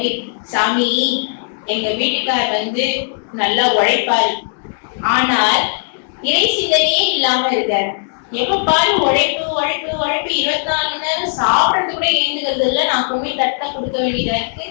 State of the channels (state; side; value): silent; right; digital silence